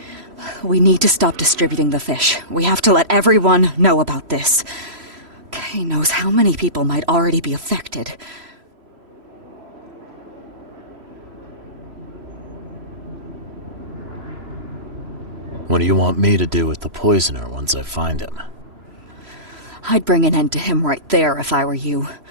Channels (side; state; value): left; late; 3.0 ms